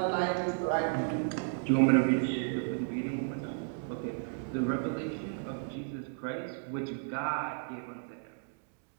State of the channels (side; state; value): left; silent; digital silence